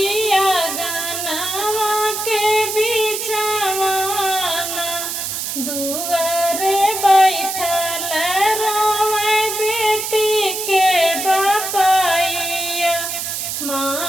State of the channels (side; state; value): right; noise; hiss, 4 dB below the sound